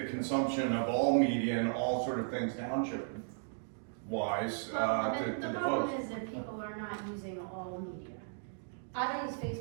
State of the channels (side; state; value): left; silent; digital silence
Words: consumption of all media and all sort of things township wise, Well, to the the problem folks. is that people are not using all media. I don't use